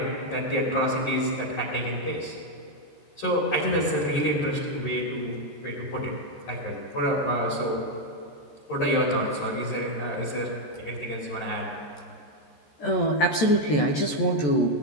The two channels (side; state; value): right; late; 14 ms